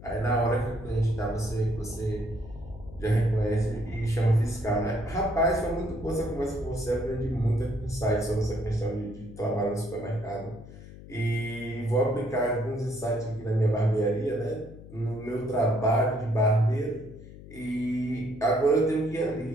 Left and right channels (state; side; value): noise; left; hum, 16 dB below the sound